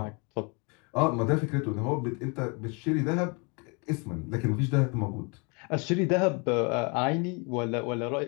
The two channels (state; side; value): quieter; right; 32.3 dB